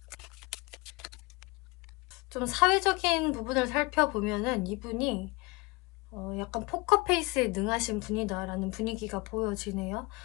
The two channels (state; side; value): quieter; right; 24.0 dB